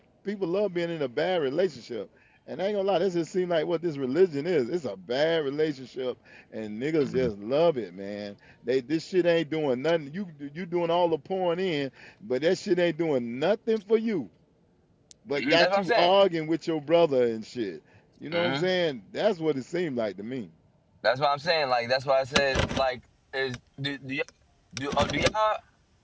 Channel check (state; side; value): identical; both; correlation 1.00